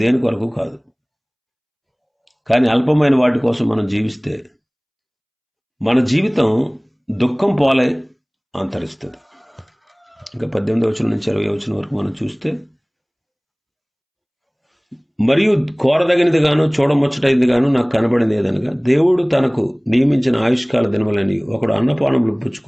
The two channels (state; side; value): identical; both; correlation 1.00